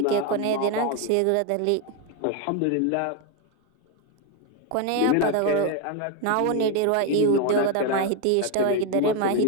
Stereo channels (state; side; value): different; both; correlation 0.01